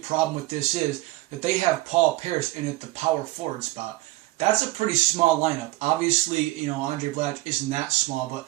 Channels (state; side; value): quieter; left; 19.6 dB